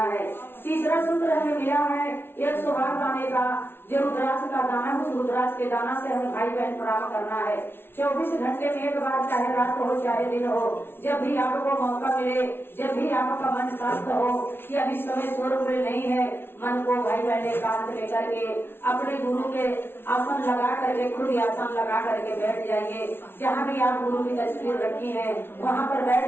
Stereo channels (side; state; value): right; late; 0.11 ms